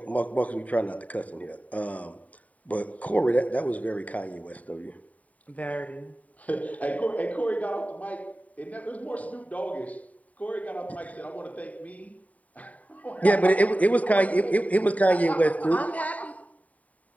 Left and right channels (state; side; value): late; right; 0.070 ms